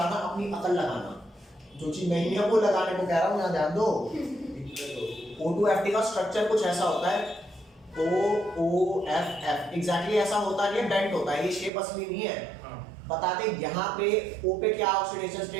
अपनी अकल लगाना, जो चीज नहीं है वो लगाने को कह रहा हूँ, यहाँ ध्यान दो। O2F का स्ट्रक्चर कुछ ऐसा होता है, OOFF एग्जैक्टली ऐसा होता नहीं है, बेंट होता है, ये शेप असली नहीं है। हाँ। बता दे यहाँ पे O पे क्या ऑक्सीडेशन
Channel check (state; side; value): drops out; left; at 11.7 s